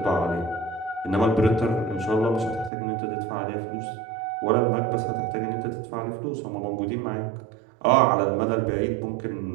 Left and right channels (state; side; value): drops out; left; at 2.7 s